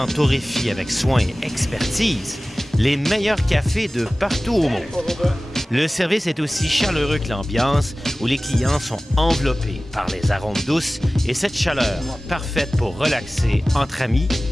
torréfient avec soin et expertise les meilleurs cafés de partout au monde. Le service est aussi chaleureux que l'ambiance, où les clients sont enveloppés par les arômes douces et cette chaleur parfaite pour relaxer entre amis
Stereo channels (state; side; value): normal; both; correlation 0.97